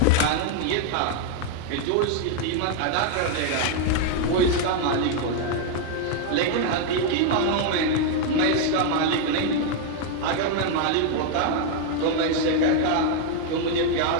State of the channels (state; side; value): different; both; correlation 0.00